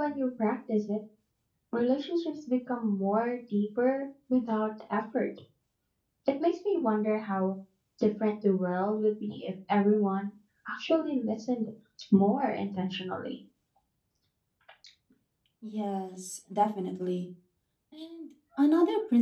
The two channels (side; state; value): both; identical; correlation 1.00